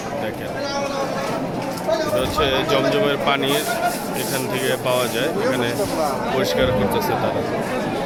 দেখেন এটা হচ্ছে জমজমের পানির এখান থেকে পাওয়া যায়, এখানে পরিষ্কার করতেছে তারা।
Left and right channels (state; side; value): identical; both; correlation 1.00